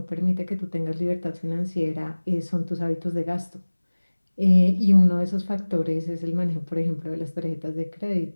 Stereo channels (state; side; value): inverted; both; correlation -1.00